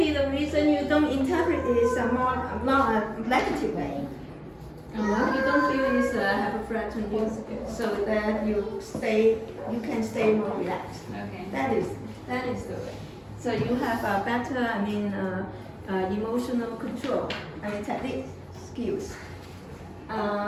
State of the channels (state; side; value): identical; both; correlation 1.00